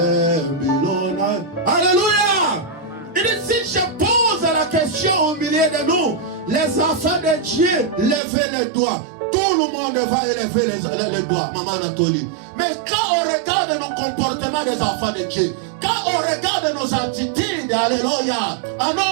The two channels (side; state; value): left; drops out; at 8.2 s